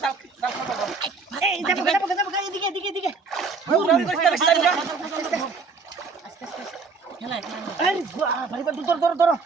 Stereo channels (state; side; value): quieter; left; 4.6 dB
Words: চাও এই দেখো এদিকে খেলা আরে ভাই বা দৌড়